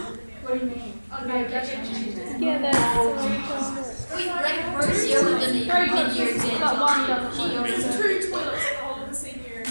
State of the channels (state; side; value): inverted; both; correlation -1.00